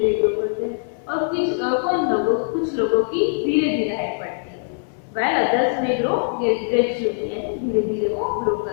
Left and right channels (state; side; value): silent; right; digital silence